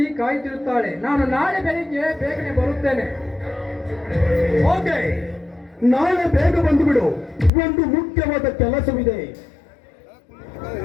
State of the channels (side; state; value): right; drops out; at 7.5 s